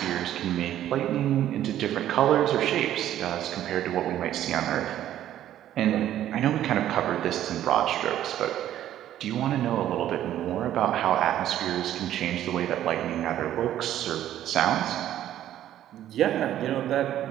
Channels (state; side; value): quieter; left; 12.1 dB